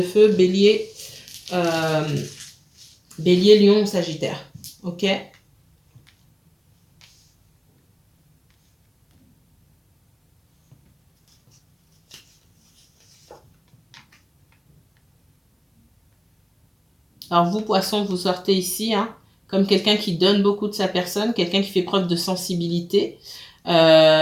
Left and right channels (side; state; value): both; identical; correlation 1.00